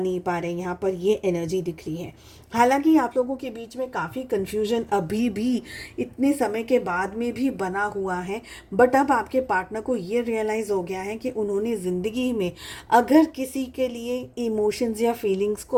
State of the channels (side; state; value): both; identical; correlation 1.00